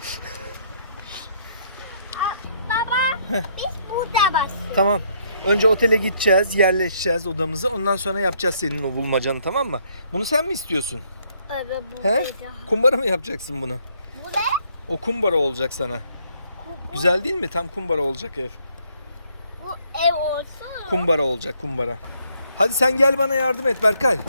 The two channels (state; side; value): inverted; both; correlation -0.69